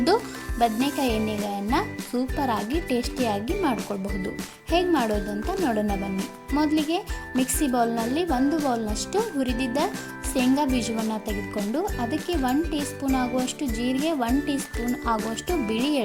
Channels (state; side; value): identical; both; correlation 1.00